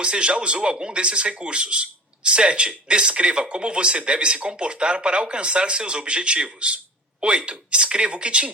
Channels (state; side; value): normal; both; correlation 0.37